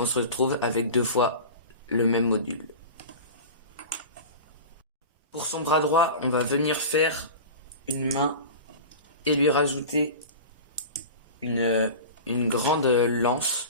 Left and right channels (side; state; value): both; inverted; correlation -0.32